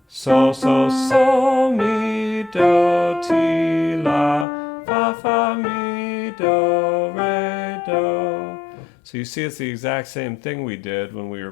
Sol, sol, sol, mi, do, ti, la, fa, fa, mi, do, re, do. So you see it's the exact same thing we did when we were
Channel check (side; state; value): right; drops out; at 4.5 s